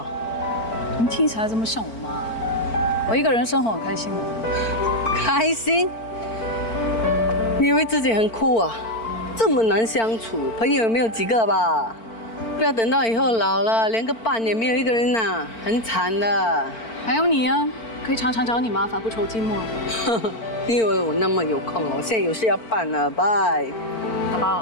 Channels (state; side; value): late; right; 4.4 ms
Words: 你听起来这么像我妈。我一个人生活很开心的。开心？你以为自己很酷啊？这么难相处，朋友也没有几个吧？不要等到以后老了，连个伴也没有一个人呐，很惨的。还有你啊，可以常常找你麻烦，不愁寂寞。你以为我那么有空哦？我现在有事要办了，拜。宝